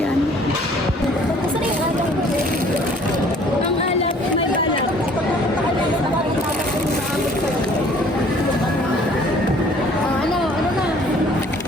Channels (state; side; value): normal; both; correlation 0.55